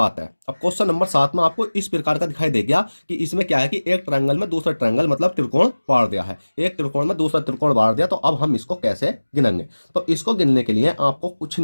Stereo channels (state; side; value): inverted; both; correlation -1.00